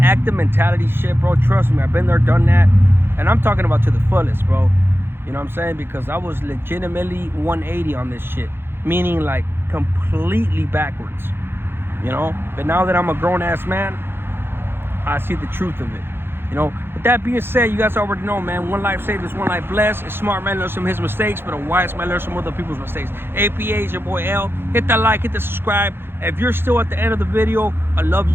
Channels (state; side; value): late; left; 0.11 ms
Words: active mentality shit, bro, trust me, I've been there, done that. And I'm talking about to the fullest, bro. You know what I'm saying? Because I was legitimately 180 on this shit. Meaning like completely backwards. You know? But now that I'm a grown-ass man, I see the truth of it. You know? With that being said, you guys already know, man, one life saved is one life blessed. A smart man learns from his mistakes, but a wise man learns from other people's mistakes. APA is your boy L. Hit that like, hit the subscribe. If you're still at the end of the video, I love